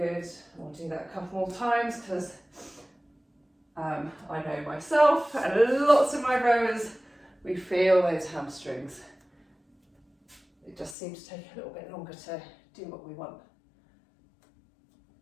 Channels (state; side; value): drops out; right; at 11.0 s